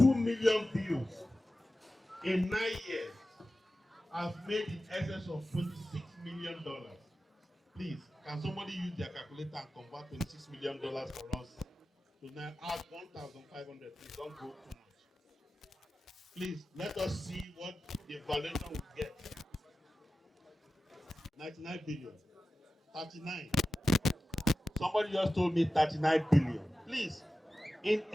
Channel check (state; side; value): normal; both; correlation 0.94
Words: million views in 9 years has made in excess of $26 million. Please, can somebody use their calculator and convert $26 million for us? So now add 1,500. Please don't go too much. Please, let us see what the valuation will get. 99 billion. 39. Somebody just told me 39 billion. Please, in